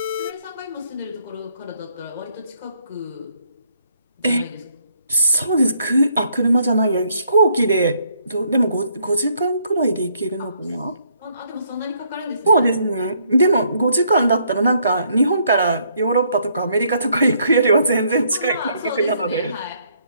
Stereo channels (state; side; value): inverted; both; correlation -0.69